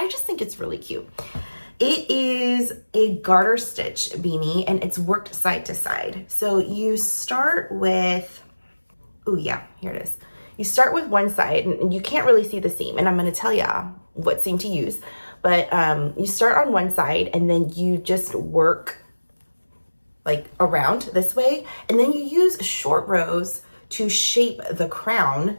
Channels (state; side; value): inverted; both; correlation -1.00